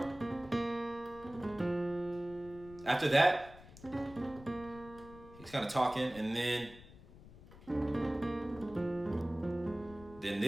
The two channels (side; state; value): left; noise; rumble, 19 dB below the sound